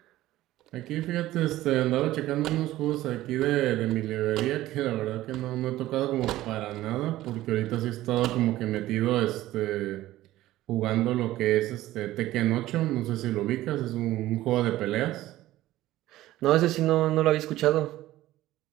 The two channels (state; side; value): quieter; left; 15.5 dB